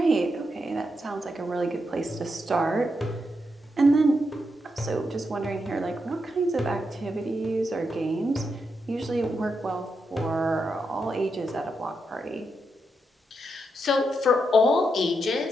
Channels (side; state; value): both; normal; correlation 0.83